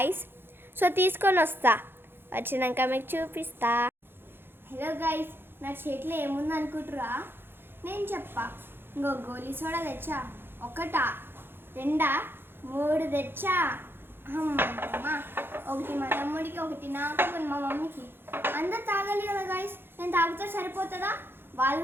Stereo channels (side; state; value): left; late; 0.10 ms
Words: సో తీసుకొని వస్తా, వచ్చినాక మీకు చూపిస్తా. హలో గైస్, నా చేతిలో ఏముంది అనుకుంటురా? నేను చెప్పా. ఇంకో గోలీ సోడా తెచ్చా. 1, 2, 3 తెచ్చా. అమ్మా, 1 మా తమ్ముడికి, 1 నాకు, 1 మా మమ్మీకి. అందరు తాగాలి కదా గైస్. నేను తాగితే సరిపోతుందా? వాళ్ళు